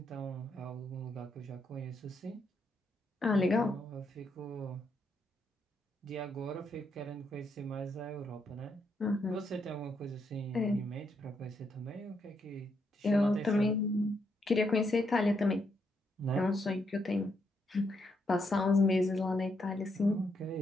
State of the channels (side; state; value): both; normal; correlation 0.78